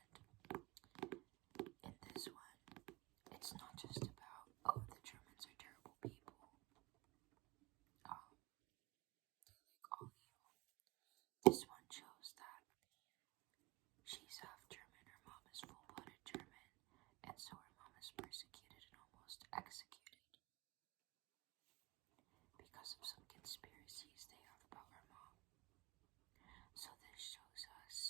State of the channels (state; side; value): quieter; left; 22.5 dB